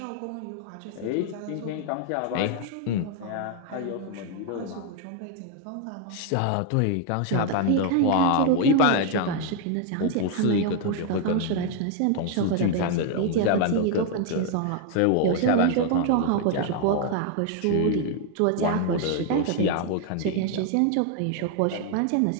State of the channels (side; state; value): both; different; correlation 0.00